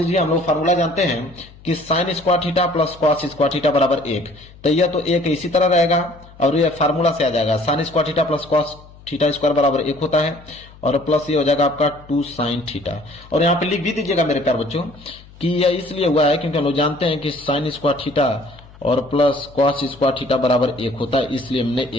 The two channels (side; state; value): left; noise; hum, 22 dB below the sound